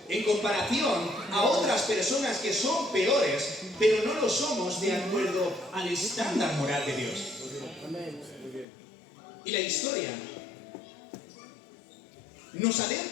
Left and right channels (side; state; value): right; drops out; at 8.7 s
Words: en comparación a otras personas que son peores, pero no lo somos de acuerdo al estándar moral de Dios. Y la historia nos